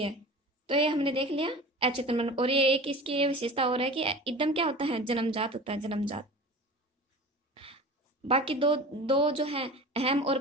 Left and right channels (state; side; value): normal; both; correlation 0.36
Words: है। तो ये हमने देख लिया अचेतन मन। और ये एक इसकी ये विशेषता और है कि एकदम क्या होता है, जन्मजात होता है, जन्मजात। बाकी दो दो जो है, अहम और